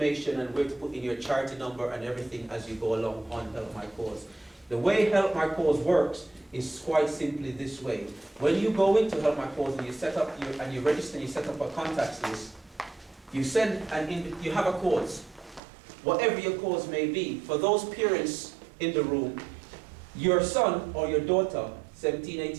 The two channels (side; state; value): left; drops out; at 15.6 s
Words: and where to put in your charity number and everything as you go along on Help My Cause. The way Help My Cause works is quite simply this way. When you go into Help My Cause and you set up and you register and you set up a contacts list, you send you have a cause, whatever your cause may be. For those parents in the room, your son or your daughter, 17,